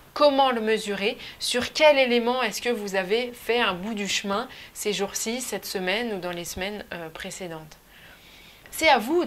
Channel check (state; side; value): identical; both; correlation 1.00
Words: comment le mesurer, sur quel élément est-ce que vous avez fait un bout du chemin ces jours-ci, cette semaine ou dans les semaines précédentes. C'est à vous